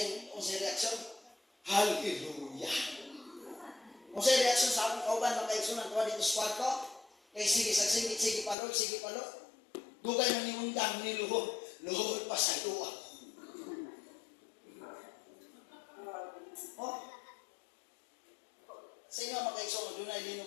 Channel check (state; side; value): drops out; right; at 8.6 s